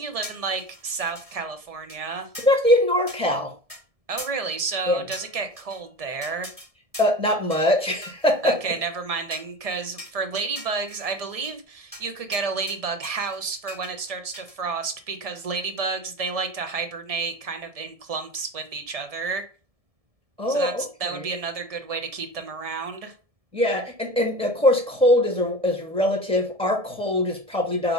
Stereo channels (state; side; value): late; left; 1.7 ms